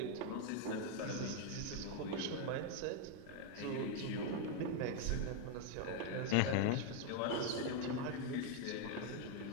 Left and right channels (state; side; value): different; both; correlation 0.01